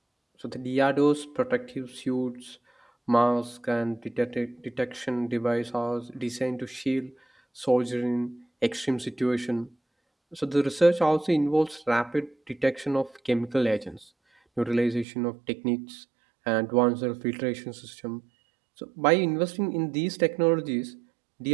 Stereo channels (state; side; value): drops out; left; at 15.1 s